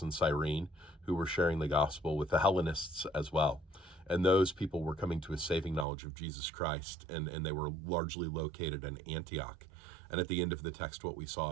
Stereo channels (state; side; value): drops out; left; at 5.9 s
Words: Cyrene who were sharing the gospel with the Hellenists as well. And those people were coming to a saving knowledge of Jesus Christ, and they were largely located in Antioch. And at the end of the text, what we